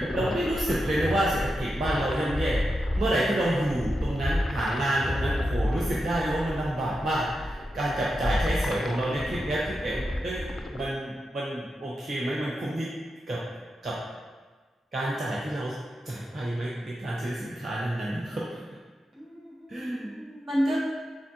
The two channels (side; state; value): both; normal; correlation 0.88